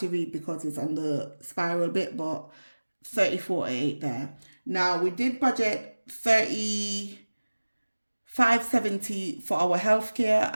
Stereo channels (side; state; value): both; inverted; correlation -1.00